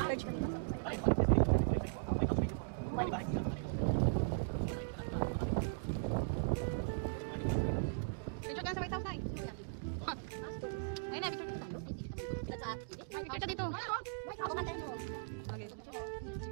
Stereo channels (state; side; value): silent; left; digital silence